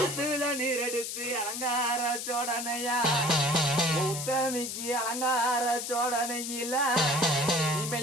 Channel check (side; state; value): left; noise; hiss, 5 dB below the sound